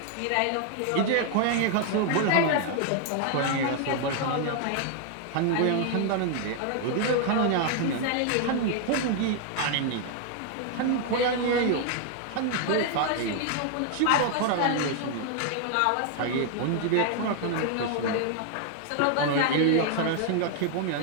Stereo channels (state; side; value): different; both; correlation 0.00